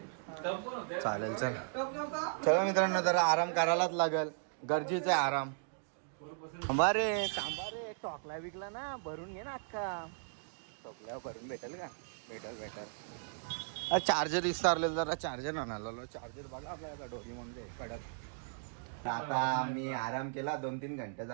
चालेल चल. चला मित्रांनो, जरा आराम करायलाच लागल. गरजेचं आहे आराम. थांबा रे टॉकला विकला ना, भरून घे ना अक्का. टॉकल्यावर भरून भेटेल का? भेटेल. चार्जर विसरले, जरा चार्जर आणायला. चार्जर बघा आपल्याला डोली म्हणजे कडक. आता मी आराम केला 2-3 घंटे.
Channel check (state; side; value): silent; left; digital silence